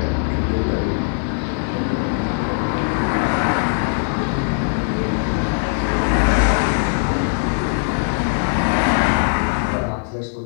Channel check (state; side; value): silent; right; digital silence